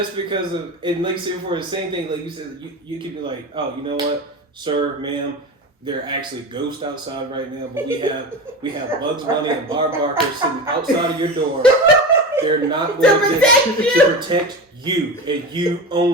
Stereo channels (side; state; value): both; normal; correlation 0.26